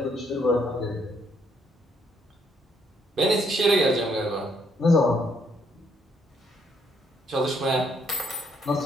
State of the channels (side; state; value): both; normal; correlation 0.70